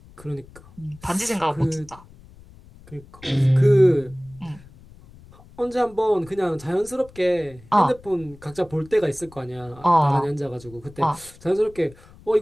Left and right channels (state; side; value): noise; left; rumble, 23 dB below the sound